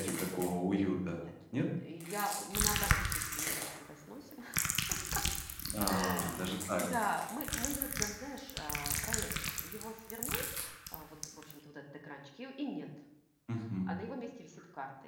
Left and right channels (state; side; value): identical; both; correlation 1.00